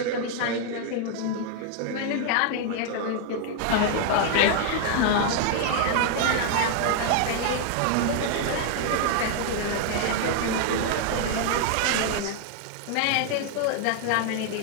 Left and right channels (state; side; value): different; both; correlation 0.00